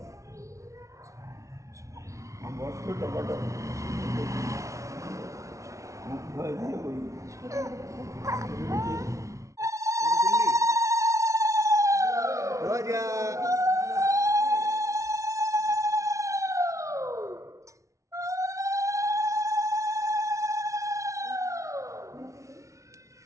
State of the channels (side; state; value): left; late; 0.15 ms